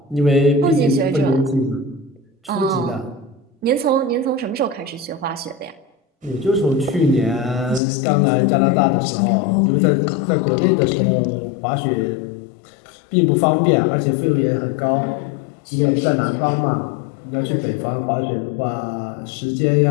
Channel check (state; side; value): drops out; right; at 7.8 s